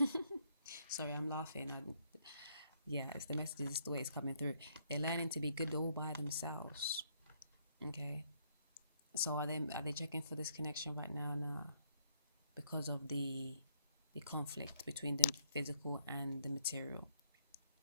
Sorry, I'm laughing. Yeah, it's the message, it's the way it's coming through. They're learning to be good all by themselves. Okay. So are they checking for this connection right now? No, because of the conflict between the physical and the material.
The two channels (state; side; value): inverted; both; correlation -0.68